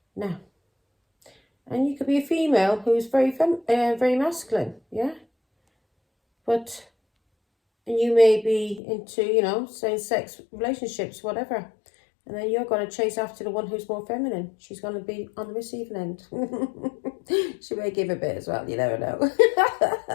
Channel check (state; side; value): drops out; right; at 8.8 s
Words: Now, And you could be a female who's very masculine, yeah? But, and you may be into, you know, same-sex relationships, whatever. And then you're going to chase after the one who's more feminine. She's going to be on the receiving end. She may give a bit as well, you never know.